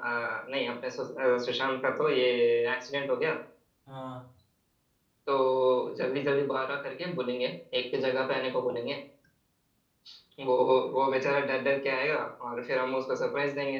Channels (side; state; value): both; identical; correlation 1.00